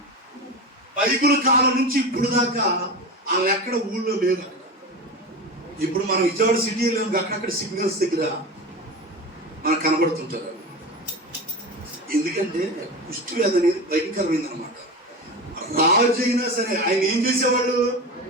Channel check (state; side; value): normal; both; correlation 0.26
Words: బైబిల్ కాలం నుంచి ఇప్పుడు దాకా వాళ్ళు ఎక్కడ ఊళ్ళో లేదు. ఇప్పుడు మనం విజయవాడ సిటీలో అక్కడక్కడ సిగ్నల్స్ దగ్గర మనకు కనబడుతుంటారు. ఎందుకంటే కుష్ఠవ్యాధి అనేది భయంకరమైంది అనమాట. రాజు అయినా సరే ఆయన ఏం చేసేవాళ్ళు?